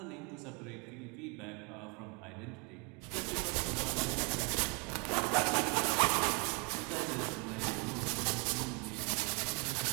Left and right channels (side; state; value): left; quieter; 32.7 dB